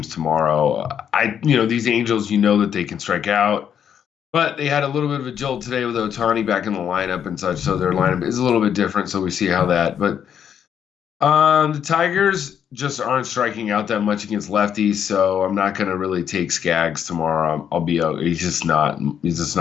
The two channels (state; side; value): quieter; right; 8.6 dB